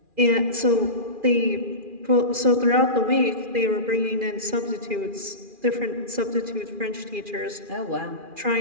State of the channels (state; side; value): late; left; 2.4 ms